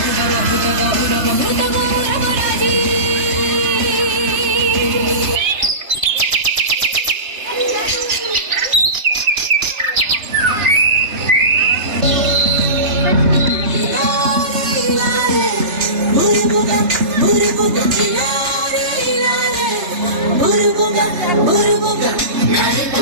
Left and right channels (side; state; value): left; late; 3.2 ms